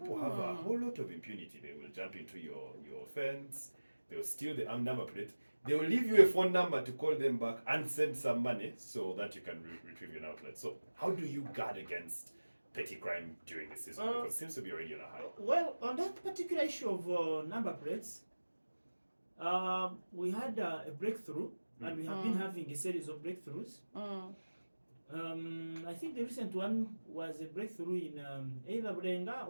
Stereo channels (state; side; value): inverted; both; correlation -1.00